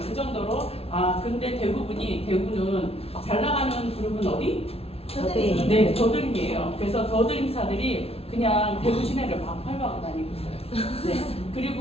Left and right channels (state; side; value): late; right; 0.29 ms